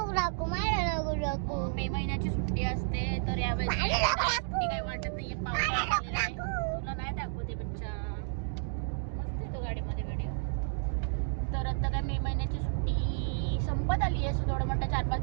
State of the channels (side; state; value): left; silent; digital silence